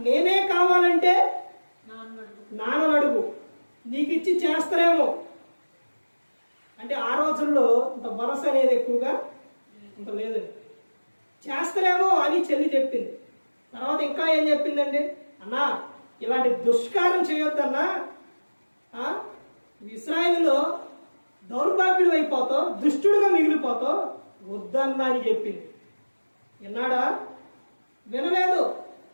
నేనే కావాలంటే నాన్న అడుగు, నీకు ఇచ్చి చేస్తారేమో. అంటే ఆ రోజుల్లో ఇంత భరోసా అనేది ఎక్కువగా ఇంత లేదండి. చేస్తారేమో అని చెల్లి చెప్పింది. తర్వాత ఇంకా ఏం చెప్పిందండి? అన్నా ఇలాంటి దుష్కారం చేయొద్దన్నా, ఇశ్రాయేలులో దౌర్భాగ్యుడు అయిపోతావు, దుష్టుడుగా మిగిలిపోతావు, వద్దన్నా అని చెప్పింది. విన్నాడా? వినలేదు.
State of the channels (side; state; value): both; inverted; correlation -1.00